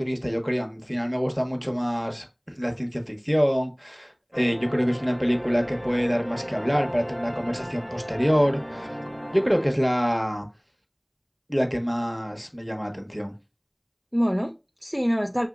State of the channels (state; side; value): identical; both; correlation 1.00